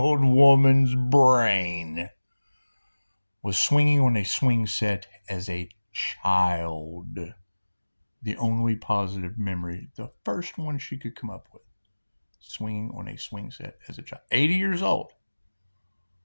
woman's brain was swinging on a swing set as a child. The only positive memory, the first one she could come up with, swinging on a swing set as a child. 80 years old.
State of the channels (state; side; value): inverted; both; correlation -1.00